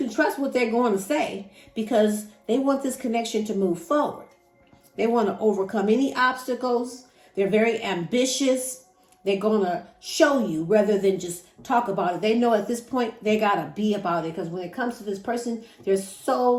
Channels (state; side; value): identical; both; correlation 1.00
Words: trust what they're going to say because they want this connection to move forward. They want to overcome any obstacles. They're very ambitious. They're going to show you rather than just talk about it. They know at this point they got to be about it because when it comes to this person, there's